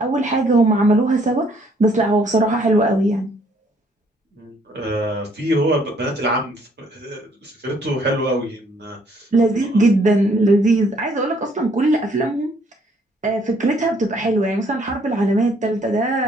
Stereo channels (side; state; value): both; normal; correlation 0.65